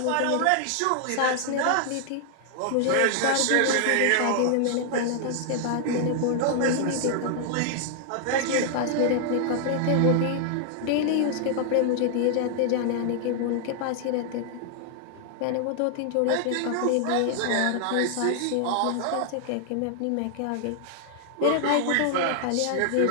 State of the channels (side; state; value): both; different; correlation 0.00